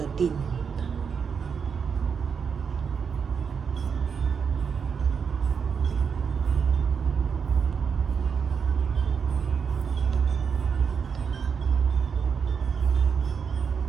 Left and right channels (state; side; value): quieter; left; 6.4 dB